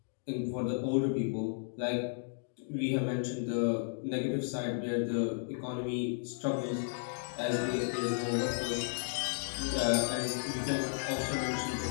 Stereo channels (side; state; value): right; silent; digital silence